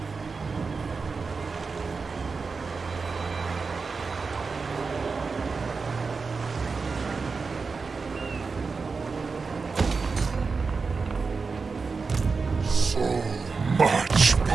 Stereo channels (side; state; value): left; quieter; 4.6 dB